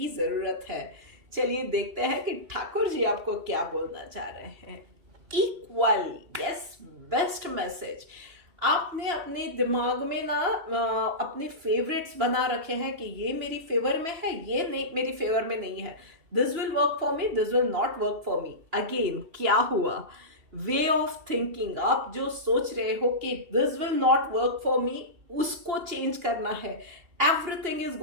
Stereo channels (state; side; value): late; left; 2.7 ms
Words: ज़रूरत है। चलिए देखते हैं कि ठाकुर जी आपको क्या बोलना चाह रहे हैं। Equal, yes, best message. आपने अपने दिमाग में ना अपने फेवरेट्स बना रखे हैं कि ये मेरी फेवर में है, ये नहीं मेरी फेवर में नहीं है, this will work for me, this will not work for me. Again क्या हुआ? Way of thinking. आप जो सोच रहे हो कि this will not work for me, उसको चेंज करना है। Everything is